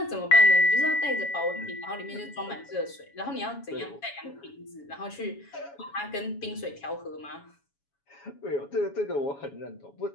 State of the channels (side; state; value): right; late; 7.2 ms